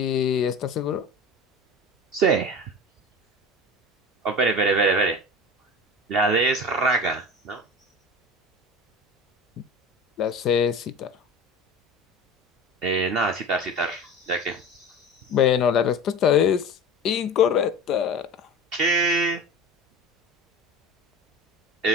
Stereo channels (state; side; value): normal; both; correlation 0.33